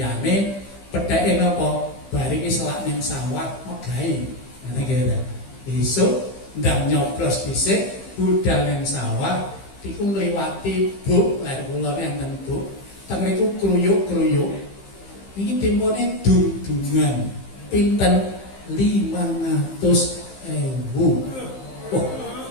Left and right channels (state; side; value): late; right; 15 ms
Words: pedheke napa? Bar iki selak ning sawah megahe. Ngene iki. Besok ndang nyoblos dhisik budal ning sawah iku ngliwati buk lar kula enten buk. Teng niku kruyuk-kruyuk. Iki tempone dung-dungan. Pinten 500.000. Oh.